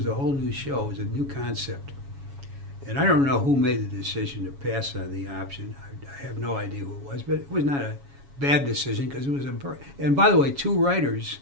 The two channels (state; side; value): late; left; 7.2 ms